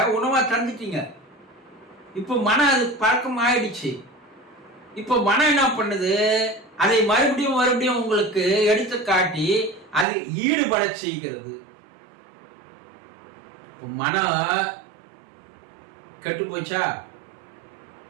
உணவா தந்துட்டீங்க. இப்போ மனம் அது பழக்கம் ஆயிடுச்சு. இப்போ மனம் என்ன பண்ணுது? அதை மறுபடியும் உங்களுக்கு எடுத்து காட்டி அதில் ஈடுபட செய்கிறது. இப்போ மனம் கெட்டு போச்சா?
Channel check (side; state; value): left; drops out; at 10.1 s